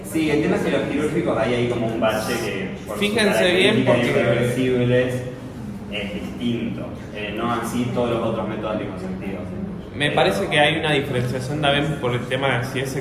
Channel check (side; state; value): both; identical; correlation 1.00